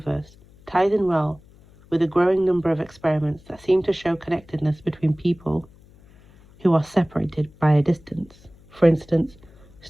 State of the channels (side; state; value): left; noise; hum, 26 dB below the sound